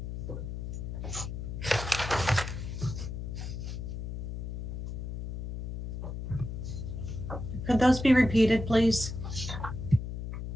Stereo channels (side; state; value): left; noise; hum, 5 dB below the sound